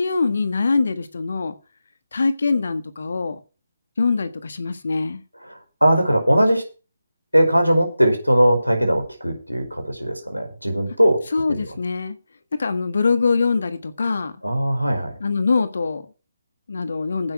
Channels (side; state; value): both; inverted; correlation -0.92